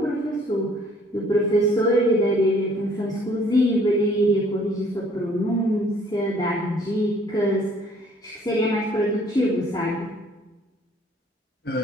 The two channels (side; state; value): both; normal; correlation 0.59